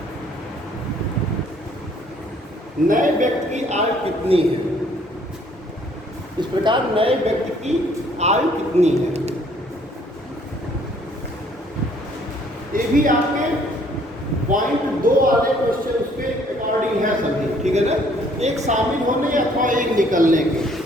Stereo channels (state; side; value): normal; both; correlation 0.61